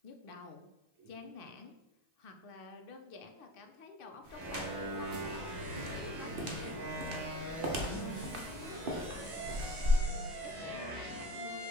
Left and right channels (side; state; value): left; late; 2.6 ms